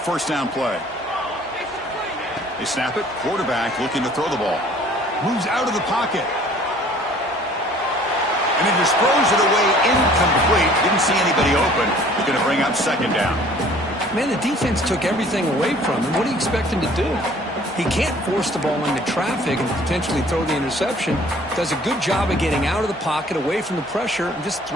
down play. They snap it. Quarterback looking to throw the ball. Moves out of the pocket. And he just throws it away incomplete. Didn't see anybody open. He's going to bring up second down. Man, the defense took everything away from him. What do you expect him to do? He can't force the ball into traffic and potentially throw the interception. Does a good job of getting out of the pocket, away from the pressure, and just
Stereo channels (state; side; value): normal; both; correlation 0.53